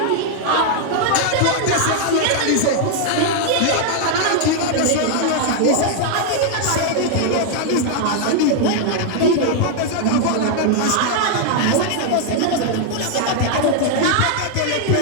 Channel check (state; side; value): different; both; correlation 0.00